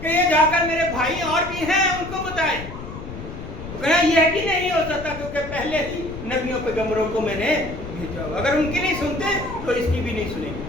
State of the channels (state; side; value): noise; left; rumble, 11 dB below the sound